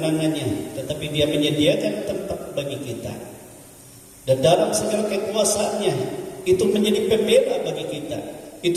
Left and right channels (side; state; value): both; identical; correlation 1.00